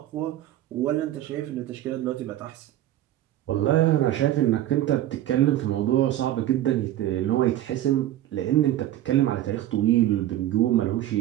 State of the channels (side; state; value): left; quieter; 13.4 dB